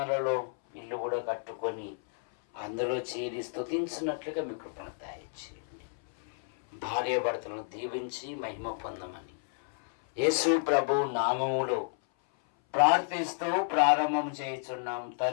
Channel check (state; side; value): silent; right; 57 dB below the other